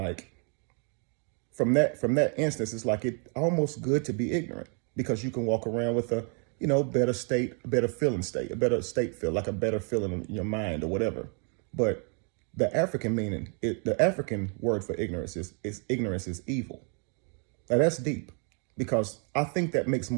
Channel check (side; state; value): left; quieter; 39.2 dB